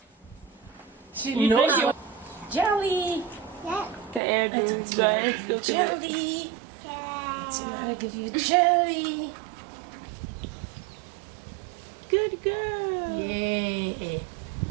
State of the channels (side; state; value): left; drops out; at 4.2 s